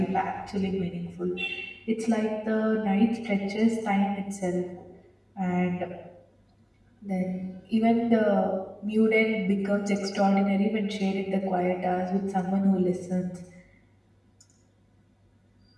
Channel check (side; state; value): both; identical; correlation 1.00